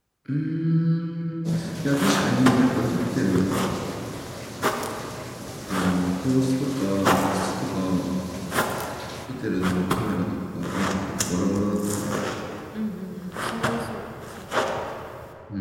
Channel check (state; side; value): identical; both; correlation 1.00